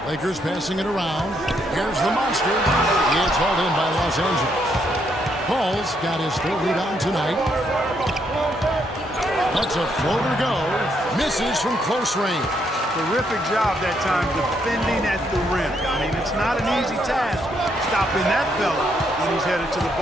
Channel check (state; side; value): normal; both; correlation 0.74